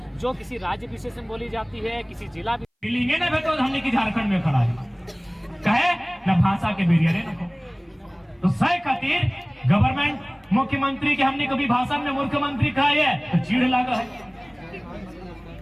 जो किसी राज्य विशेष में बोली जाती है, किसी जिला तो हमने की झारखंड में खड़ा है कहे न भाषा के बेरियर तो सह खातिर गवर्नमेंट मुख्यमंत्री के हमने कभी भाषण में मुख्यमंत्री कहा है तो चीड़ लगा है।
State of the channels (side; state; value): both; identical; correlation 1.00